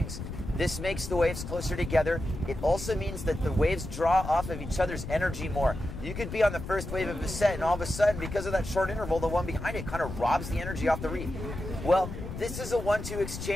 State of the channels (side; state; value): left; noise; rumble, 8 dB below the sound